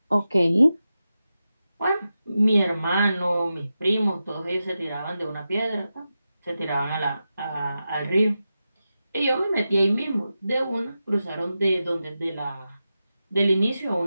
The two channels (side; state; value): both; inverted; correlation -0.91